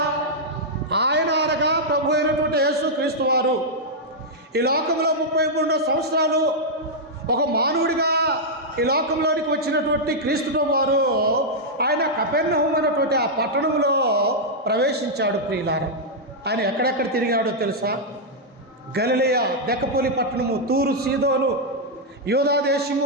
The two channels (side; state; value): both; normal; correlation -0.05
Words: ఆయన అనగా ప్రభు అయినటువంటి యేసుక్రీస్తు వారు ఈ లోకంలో 33 సంవత్సరాలు ఒక మానవుడిగా ఈ లోకంలోనికి వచ్చినటువంటి క్రీస్తు వారు ఆయన కపెర్నహూము అనేటువంటి ఆ పట్టణంలో ప్రవేశించాడు ప్రియులారా. ఆయన ఎక్కడెక్కడ తిరిగాడో తెలుసా? గలిలయ, దెకపోలి పట్టణము, తూరు, సీదోను, యూదా